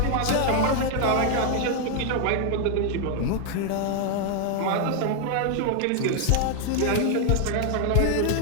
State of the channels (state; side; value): different; both; correlation 0.00